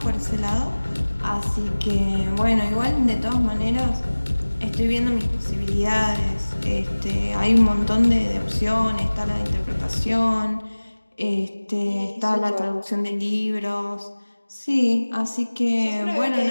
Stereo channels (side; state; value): both; inverted; correlation -1.00